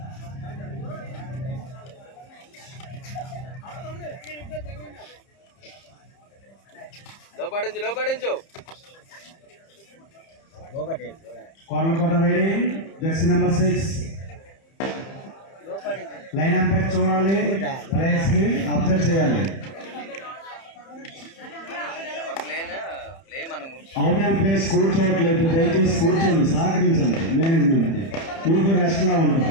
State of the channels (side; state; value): right; late; 30 ms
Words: లోపడించు. Korlakota ready. Jersey number 6. Line umpire చూడాలి. ప్లేయర్స్ ని అబ్జర్వ్ చేయాలి. అవుట్ అండ్ ప్లేస్ కూర్చోవట్లేదు. దయచేసి కూర్చోండి. సహకరించండి మేనేజ్మెంట్ కి. మీకు రెస్ట్ లా